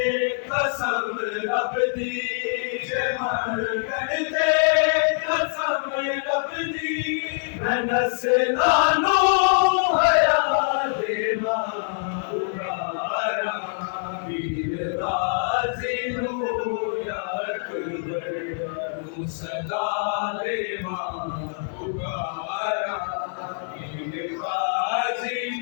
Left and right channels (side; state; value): right; silent; digital silence